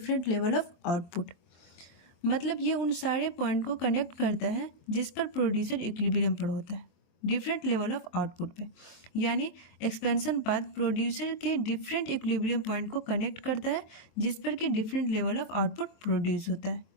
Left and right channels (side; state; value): right; late; 23 ms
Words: level of output. मतलब ये उन सारे पॉइंट को कनेक्ट करता है जिस पर प्रोड्यूसर इक्विलिब्रियम पर होता है डिफरेंट लेवल ऑफ आउटपुट पे। यानी एक्सपेंशन पाथ प्रोड्यूसर के डिफरेंट इक्विलिब्रियम पॉइंट को कनेक्ट करता है जिस पर कि different level of output produce होता है,